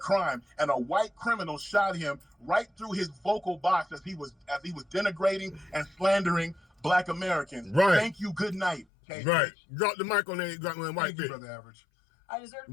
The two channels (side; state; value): right; drops out; at 8.8 s